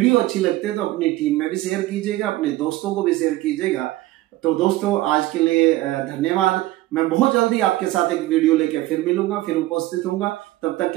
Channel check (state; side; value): quieter; left; 17.2 dB